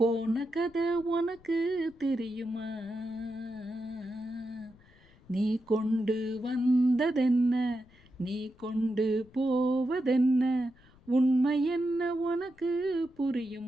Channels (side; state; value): left; noise; rumble, 28 dB below the sound